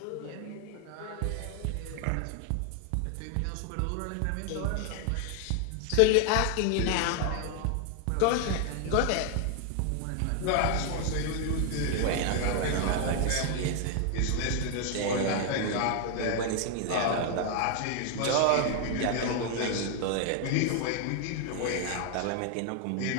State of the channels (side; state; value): both; different; correlation 0.00